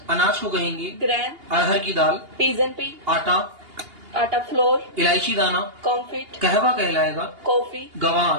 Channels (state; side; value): late; left; 2.8 ms